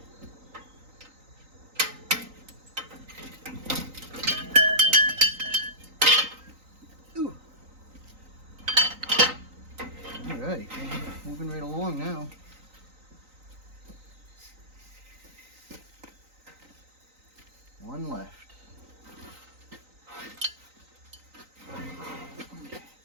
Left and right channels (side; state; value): left; late; 3.9 ms